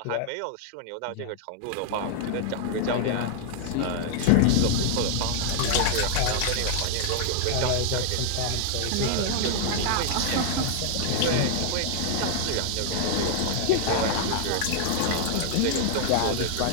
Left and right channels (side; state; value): both; different; correlation -0.01